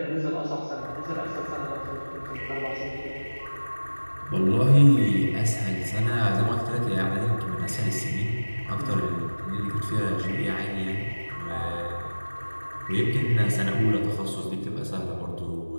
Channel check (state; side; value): inverted; both; correlation -1.00